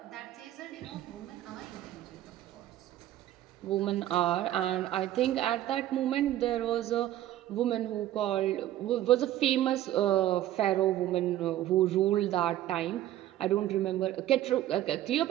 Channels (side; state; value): left; quieter; 13.4 dB